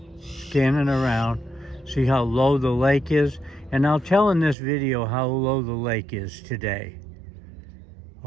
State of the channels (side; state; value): left; drops out; at 4.5 s